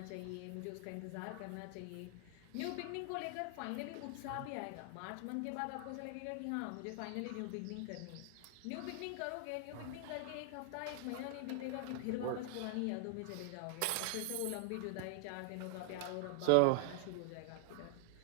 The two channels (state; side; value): different; both; correlation 0.00